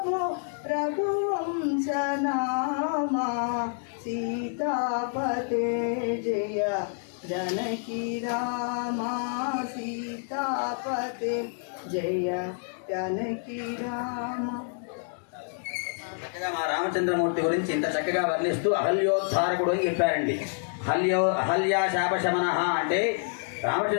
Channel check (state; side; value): silent; right; 59 dB below the other